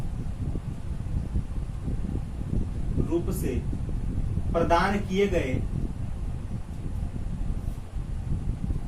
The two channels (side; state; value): both; identical; correlation 1.00